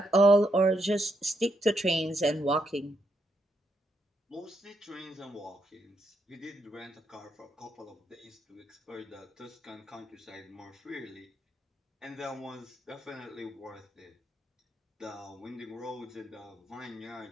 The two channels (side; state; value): both; normal; correlation 0.78